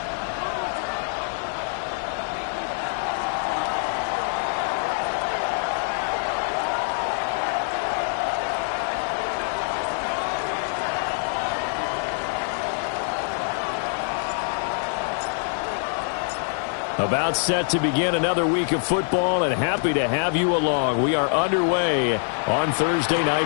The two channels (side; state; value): right; silent; digital silence